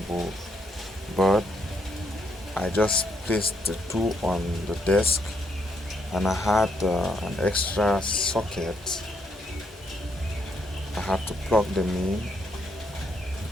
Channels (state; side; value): normal; both; correlation 0.75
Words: But I just placed the two on the desk, and I had an extra socket. I had to plug them in,